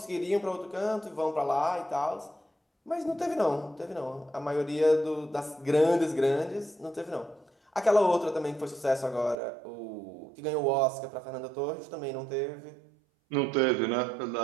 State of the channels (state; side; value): drops out; left; at 9.3 s